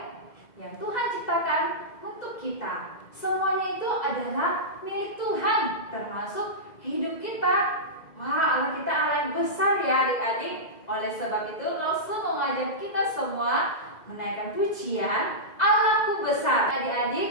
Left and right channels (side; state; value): right; late; 2.0 ms